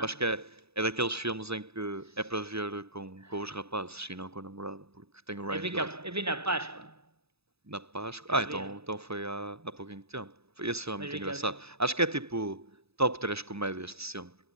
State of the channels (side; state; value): left; late; 0.78 ms